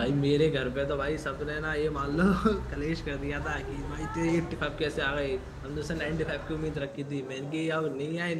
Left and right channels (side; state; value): both; identical; correlation 1.00